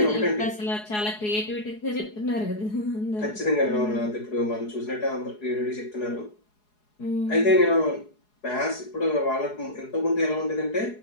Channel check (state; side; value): late; right; 4.8 ms